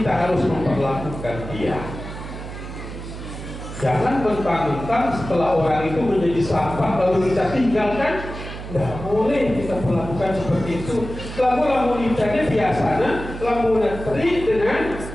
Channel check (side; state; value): right; noise; hum, 10 dB below the sound